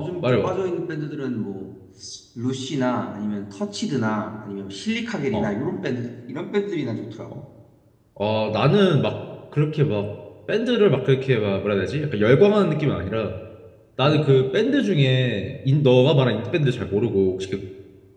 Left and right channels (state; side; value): identical; both; correlation 1.00